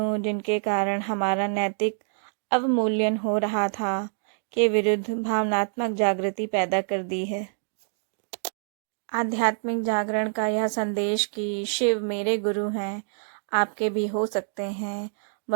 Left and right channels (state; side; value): silent; left; digital silence